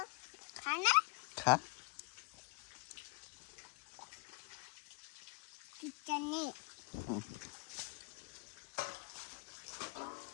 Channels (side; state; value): right; quieter; 31.9 dB